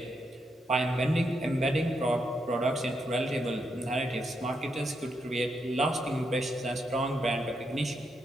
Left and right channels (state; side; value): normal; both; correlation 0.81